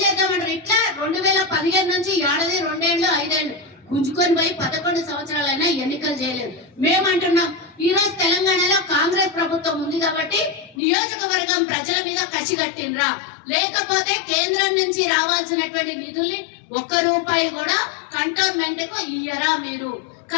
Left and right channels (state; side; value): drops out; right; at 10.8 s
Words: చేద్దామంటారు? ఇట్లా 2015 నుంచి 2 ఏళ్ళు 5 ఏళ్ళు గుంజుకొని పోయి 11 సంవత్సరాలైనా ఎన్నికలు చేయలేదు. మేమంటున్నాం ఈ రోజు తెలంగాణలో కాంగ్రెస్ ప్రభుత్వం ఉంది కాబట్టి నియోజకవర్గం ప్రజల మీద కసి కట్టినరా, లేకపోతే కేంద్రం నుంచి రావాల్సినటువంటి నిధుల్ని 1 రూపాయి కూడా కంటోన్మెంట్ కు ఇయ్యరా మీరు?